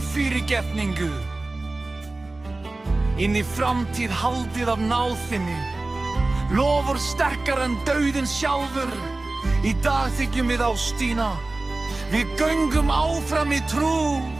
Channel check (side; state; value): left; quieter; 3.1 dB